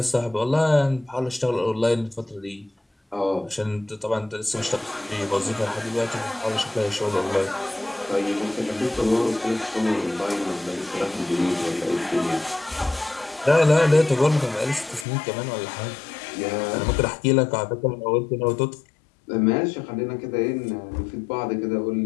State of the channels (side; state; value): right; drops out; at 15.1 s